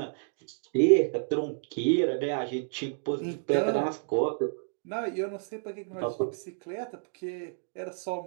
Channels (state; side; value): silent; left; 58 dB below the other